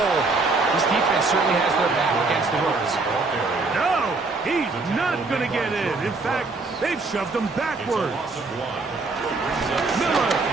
this defense certainly has their back against the ropes. No, he's not going to get in. In fact, they've shoved him backwards. Miller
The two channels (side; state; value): left; quieter; 3.7 dB